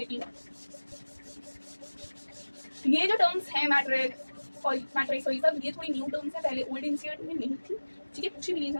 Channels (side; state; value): both; inverted; correlation -1.00